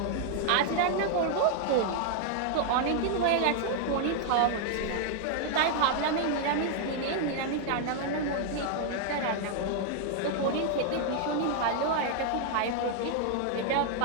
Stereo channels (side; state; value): both; different; correlation -0.01